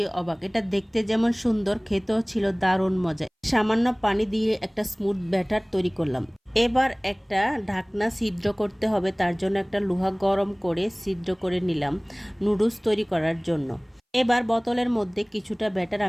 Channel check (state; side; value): identical; both; correlation 1.00